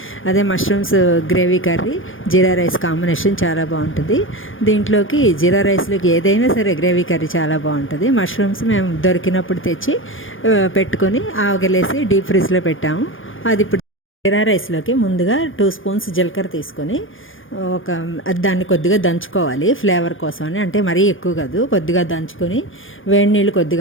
అదే మష్రూమ్స్ గ్రేవీ కర్రీ జీరా రైస్ కాంబినేషన్ చాలా బాగుంటుంది. దీంట్లోకి జీరా రైస్లోకి ఏదైనా సరే గ్రేవీ కర్రీ చాలా బాగుంటుంది. మష్రూమ్స్ మేము దొరికినప్పుడు తెచ్చి పెట్టుకొని ఆవగలేసి డీప్ ఫ్రిడ్జ్లో పెట్టాము. అది ఇప్పుడు జీరా రైస్లోకి ముందుగా 2 స్పూన్స్ జీలకర్ర తీసుకొని దాన్ని కొద్దిగా దంచుకోవాలి ఫ్లేవర్ కోసం అని. అంటే మరీ ఎక్కువ కాదు, కొద్దిగా దంచుకొని వేడి నీళ్ళు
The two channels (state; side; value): late; right; 0.58 ms